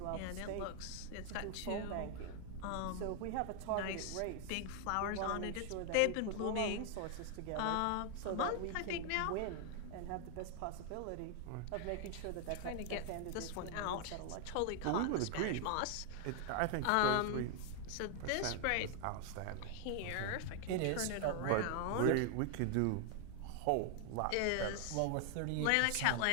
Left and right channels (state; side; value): different; both; correlation 0.00